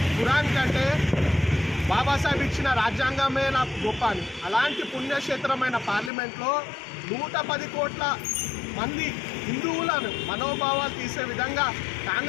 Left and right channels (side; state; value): right; drops out; at 6.1 s